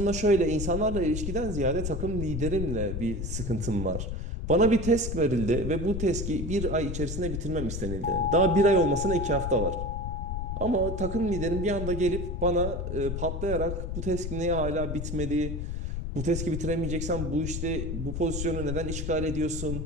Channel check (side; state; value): left; noise; rumble, 4 dB below the sound